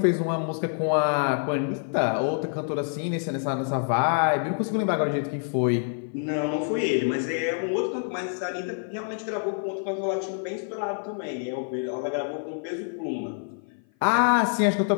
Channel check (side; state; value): right; silent; 56 dB below the other